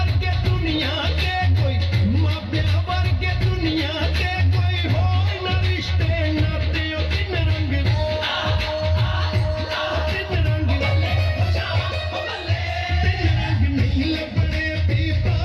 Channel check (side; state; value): both; identical; correlation 1.00